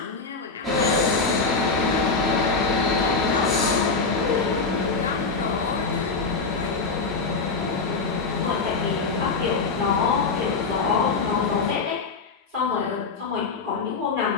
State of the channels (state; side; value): quieter; right; 4.4 dB